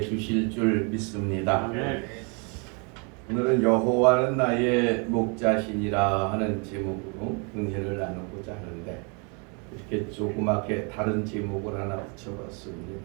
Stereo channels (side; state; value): left; quieter; 34.7 dB